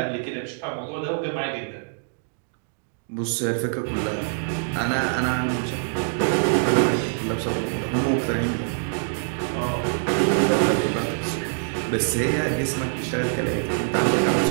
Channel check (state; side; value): silent; left; digital silence